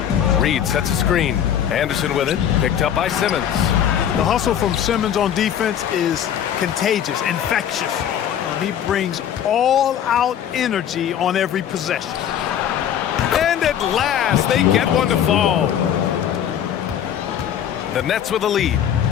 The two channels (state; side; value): quieter; right; 9.6 dB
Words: Reed sets a screen. Anderson with it, picked up by Simmons. The hustle from Simmons on defense is contagious, infectious. He brings all-out energy on every possession. And at last, they get one to fall. The Nets with a lead.